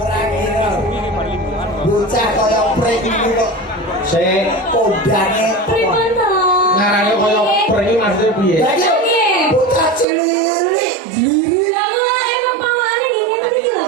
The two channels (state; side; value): drops out; left; at 10.1 s